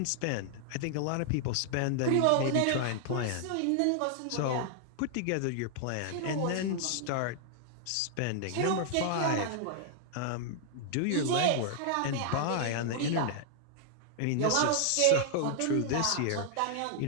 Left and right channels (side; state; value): both; different; correlation 0.00